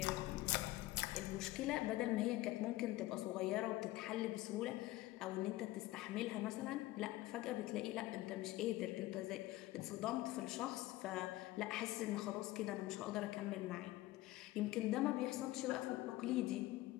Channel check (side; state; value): right; quieter; 17.4 dB